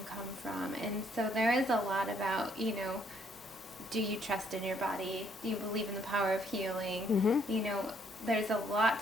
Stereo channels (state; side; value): normal; both; correlation 0.68